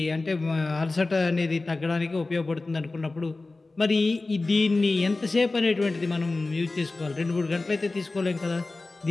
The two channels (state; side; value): quieter; right; 3.3 dB